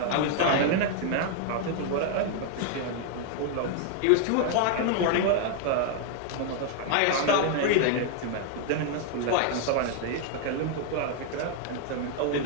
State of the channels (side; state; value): both; different; correlation 0.00